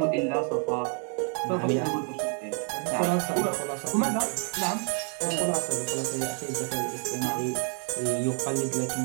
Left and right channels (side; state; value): left; quieter; 39.1 dB